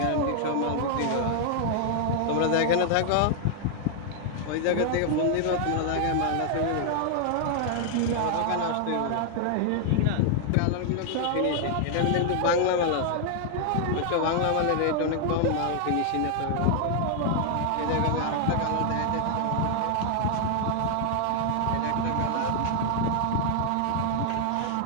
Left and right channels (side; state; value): both; different; correlation 0.00